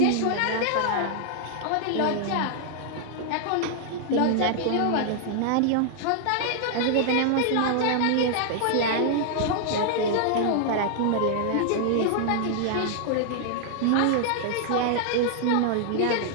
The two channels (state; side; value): different; both; correlation -0.01